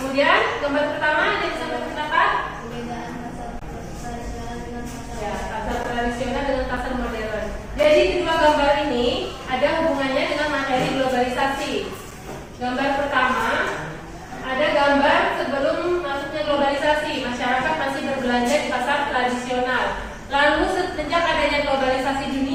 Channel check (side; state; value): both; identical; correlation 1.00